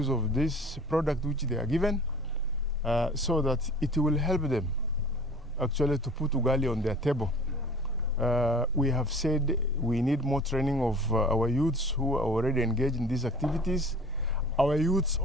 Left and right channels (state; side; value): normal; both; correlation 0.45